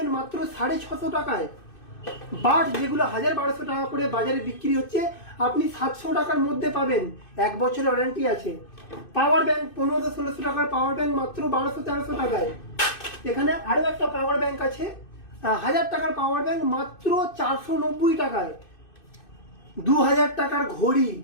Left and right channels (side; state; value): right; late; 2.6 ms